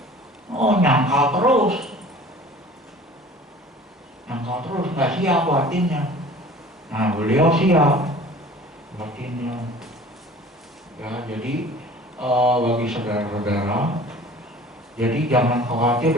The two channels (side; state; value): both; normal; correlation 0.45